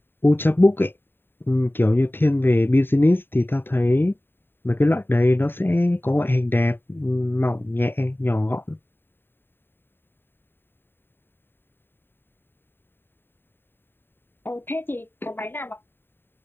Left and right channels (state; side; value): late; right; 0.10 ms